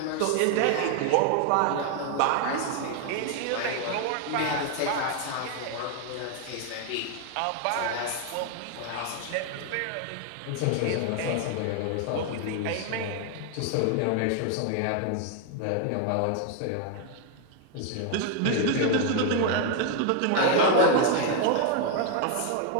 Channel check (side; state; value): both; different; correlation 0.01